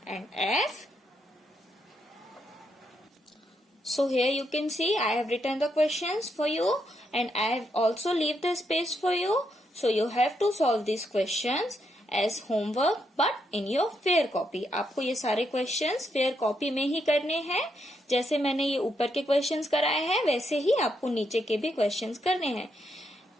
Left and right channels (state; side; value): normal; both; correlation 0.79